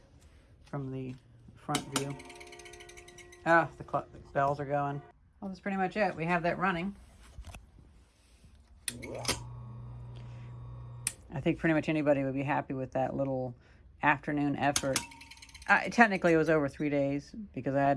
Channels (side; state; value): both; identical; correlation 1.00